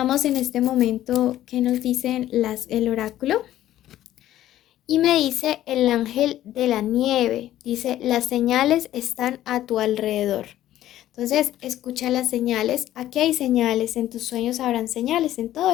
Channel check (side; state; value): right; quieter; 13.3 dB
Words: en este momento qué nos dicen el oráculo. Y me dice el ángel de la nieve, dice, las señales están a tu alrededor. Entonces, escucha las señales. Aquí hay señales, en tus sueños habrán señales, en todo